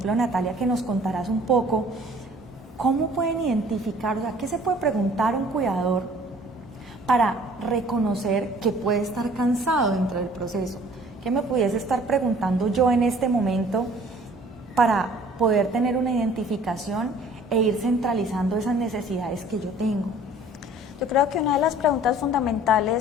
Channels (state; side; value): normal; both; correlation 0.52